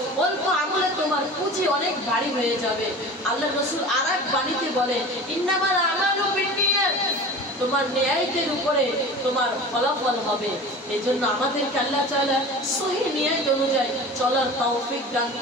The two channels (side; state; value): both; normal; correlation 0.36